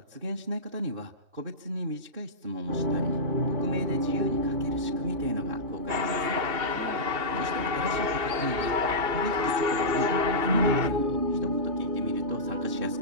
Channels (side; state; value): left; late; 2.8 ms